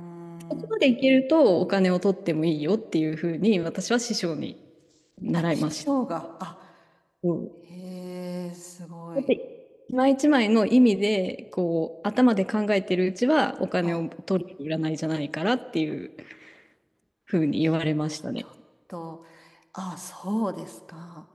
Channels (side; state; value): both; identical; correlation 1.00